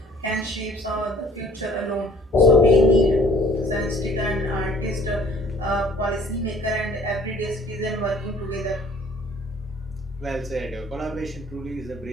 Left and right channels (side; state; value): both; normal; correlation 0.55